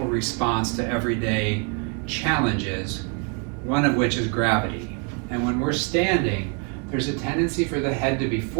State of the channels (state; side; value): quieter; left; 34.5 dB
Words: response to everyday challenges, one of which is gravity. And when we're standing, there's a tendency for the head to be